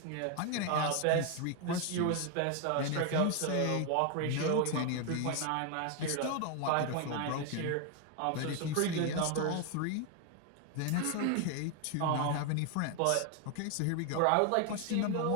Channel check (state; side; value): different; both; correlation 0.01